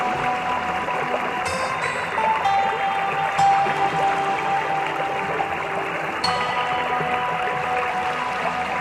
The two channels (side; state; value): both; identical; correlation 1.00